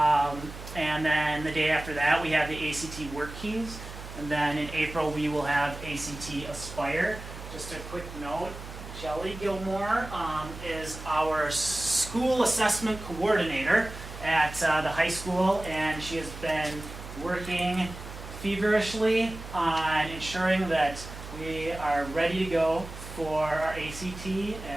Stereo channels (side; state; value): right; noise; hum, 12 dB below the sound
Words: And then the day after that, we have the ACT Work Keys. And then in April, we will have ACT Aspire. Just a quick note, Shelley Gilmore is our school assessment coordinator at the high school, and she has been working feverishly on ensuring that we are ready to go for our ACT,